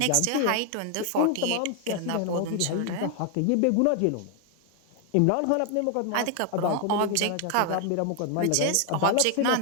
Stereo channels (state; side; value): different; both; correlation 0.00